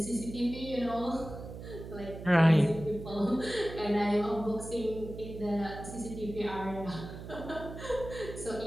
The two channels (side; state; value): right; noise; hum, 11 dB below the sound